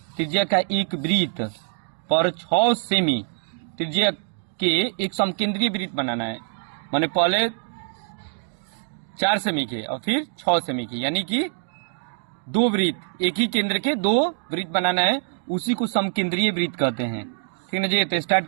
त्रिज्या का एक वृत्त पर 6 सेमी त्रिज्या के एक समकेंद्रीय वृत्त बनाना है। माने पहले 4 सेमी के और फिर 6 सेमी की, यानी कि 2 वृत्त, एक ही केंद्र के 2 वृत्त बनाना है, उसी को समकेंद्रीय वृत्त कहते हैं। ठीक है जी, तो स्टार्ट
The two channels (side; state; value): left; silent; digital silence